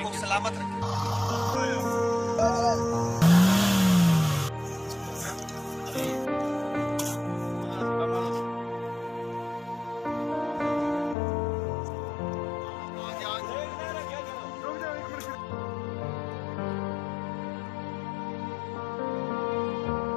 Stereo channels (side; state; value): right; drops out; at 11.2 s